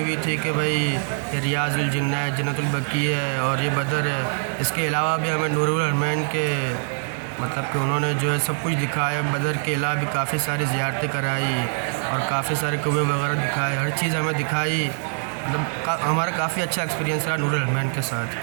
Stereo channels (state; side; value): silent; left; 60 dB below the other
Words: हुई थी कि भाई ये रियाजुल जिन्ना है, जन्नतुल बकी है और ये बदर है। इसके अलावा भी हमें नूरुल हरमैन के मतलब कि उन्होंने जो है सब कुछ दिखाया। बदर के अलावा भी काफ़ी सारी ज़ियारतें कराई और काफ़ी सारे कुएँ वगैरह दिखाए, हर चीज़ हमें दिखाई। मतलब हमारा काफ़ी अच्छा एक्सपीरियंस रहा नूरुल हरमैन के